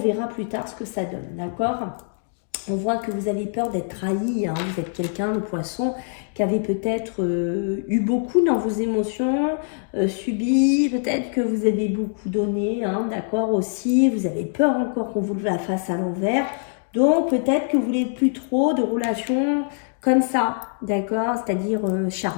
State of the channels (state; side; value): silent; right; digital silence